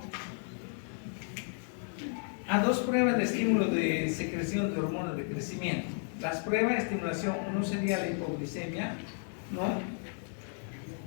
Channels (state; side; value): silent; right; 56 dB below the other